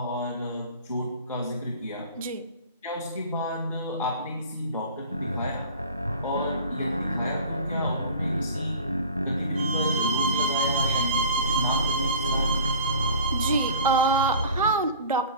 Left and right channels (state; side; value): inverted; both; correlation -0.39